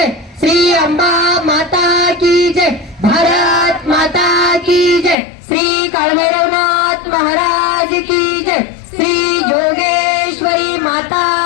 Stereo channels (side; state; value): right; drops out; at 5.2 s